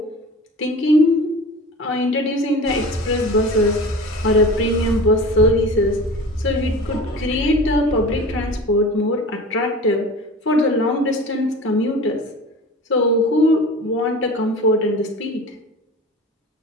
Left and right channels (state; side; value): normal; both; correlation 0.37